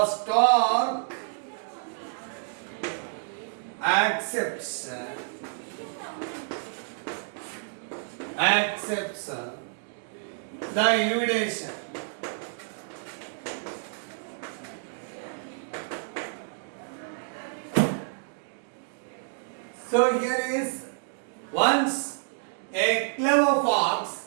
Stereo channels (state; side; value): silent; left; digital silence